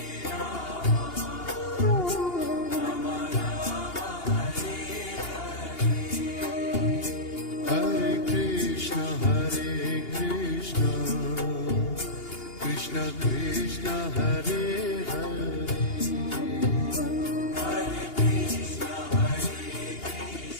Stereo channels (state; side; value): late; right; 2.8 ms